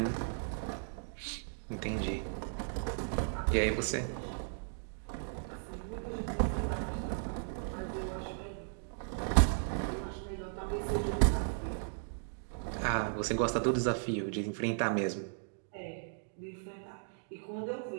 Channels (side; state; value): left; silent; digital silence